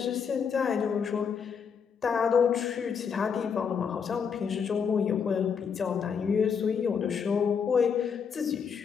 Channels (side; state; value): right; quieter; 6.6 dB